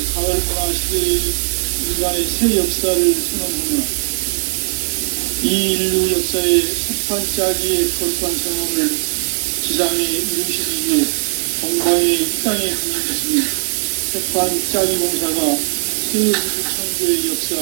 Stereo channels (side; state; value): left; silent; digital silence